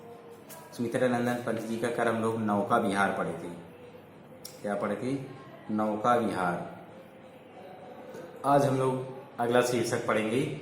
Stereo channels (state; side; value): identical; both; correlation 1.00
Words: सुमित्रा नंदन पंत जी का कल हम लोग नौका विहार पढ़े थे। क्या पढ़े थे? नौका विहार। आज हम लोग अगला शीर्षक पढ़ेंगे